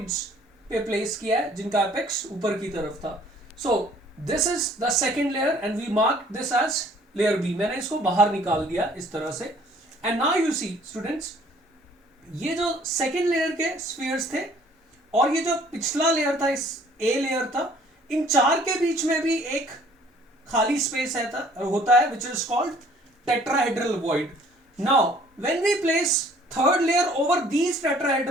पे प्लेस किया है जिनका एपेक्स ऊपर की तरफ था. So this is the second layer and we mark this as layer B. मैंने इसको बाहर निकाल दिया इस तरह से. And now you see students, ये जो सेकेंड लेयर के स्फीयर्स थे और ये जो पिछला लेयर था, इस ए लेयर था, इन चार के बीच में भी एक खाली स्पेस होता है which is called tetrahedral void. Now when we place third layer over these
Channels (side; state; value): both; normal; correlation 0.57